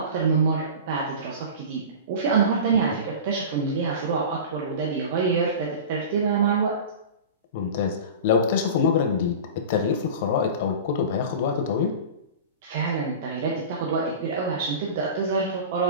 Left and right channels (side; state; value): both; inverted; correlation -0.32